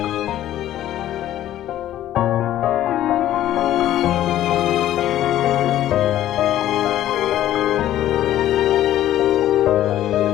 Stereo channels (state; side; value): quieter; right; 12.8 dB